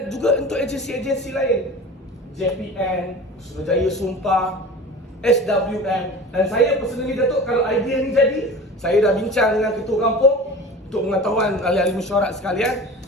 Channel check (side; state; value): both; normal; correlation 0.36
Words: juga untuk agensi-agensi lain, JPN, Suruhanjaya Sumpah, SWM. Dan saya personally, Datuk, kalau idea ni jadi, saya dah bincang dengan ketua kampung untuk pengetahuan ahli-ahli mesyuarat sekalian.